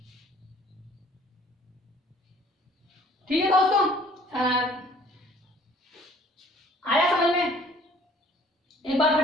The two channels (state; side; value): normal; both; correlation 0.55